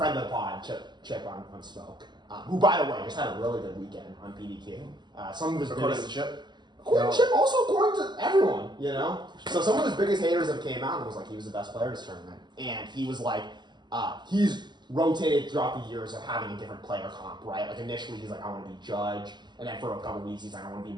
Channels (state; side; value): late; left; 0.21 ms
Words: of the pod, Chip on Smoke, who by the way just had a really good weekend on PDQ. Some of his According to biggest, Chip. according to Chip, also according to everyone, you know. So some of his biggest haters have came out and was like he was the best player this tournament, and he was like, he's rotated throughout the years of having a different player comp, right? Like initially he's like, I want to be Judge, and then for a couple weeks he's like, I want to be